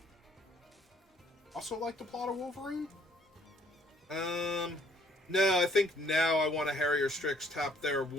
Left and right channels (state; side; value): normal; both; correlation 0.62